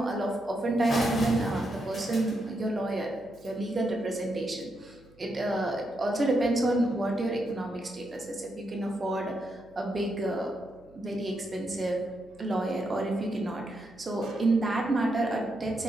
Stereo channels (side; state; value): right; noise; hum, 27 dB below the sound